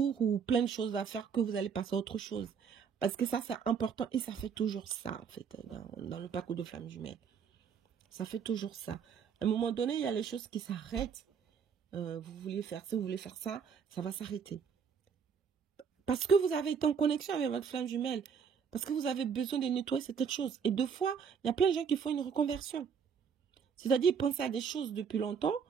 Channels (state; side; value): quieter; left; 6.7 dB